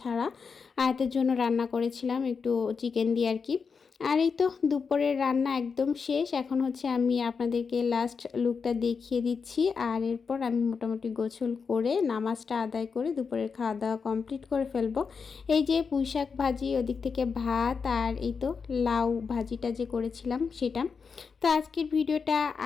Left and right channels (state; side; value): quieter; right; 5.5 dB